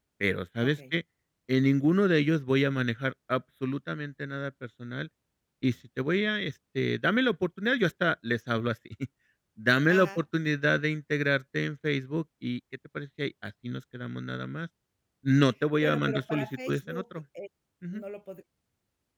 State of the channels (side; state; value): both; identical; correlation 1.00